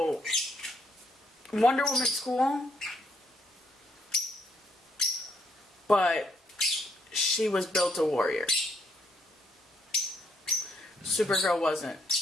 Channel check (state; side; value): normal; both; correlation 0.72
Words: Wonder Woman's cool, but she was built a warrior. Supergirl wasn't.